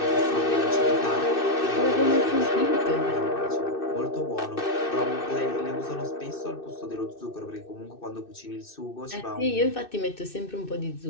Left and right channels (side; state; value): right; late; 2.6 ms